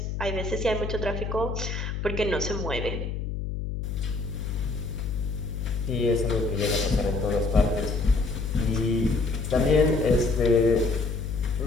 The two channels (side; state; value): left; noise; hum, 4 dB below the sound